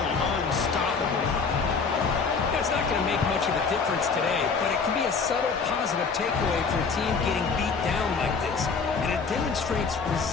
unstoppable. That's not going to make much of a difference today, but it can be a subtle positive takeaway for a team getting beat down like this. And it demonstrates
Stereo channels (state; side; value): quieter; right; 5.1 dB